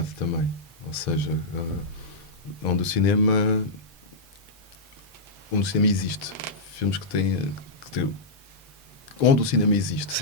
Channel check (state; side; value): normal; both; correlation -0.10